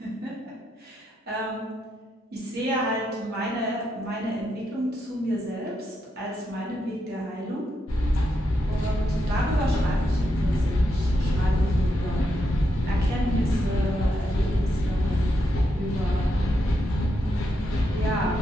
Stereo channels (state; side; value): normal; both; correlation 0.82